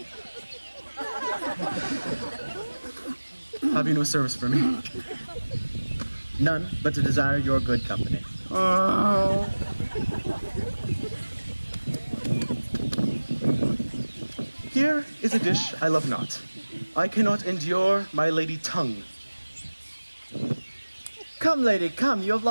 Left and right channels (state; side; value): inverted; both; correlation -1.00